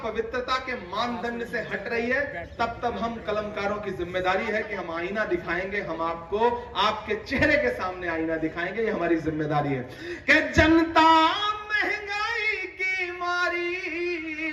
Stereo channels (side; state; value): both; identical; correlation 1.00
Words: पवित्रता के मानदंड से हट रही है, तब तब हम कलमकारों की जिम्मेदारी है कि हम आईना दिखाएंगे, हम आपको आपके चेहरे के सामने आईना दिखाएंगे, ये हमारी जिम्मेदारी है। कि जनता महंगाई की मारी,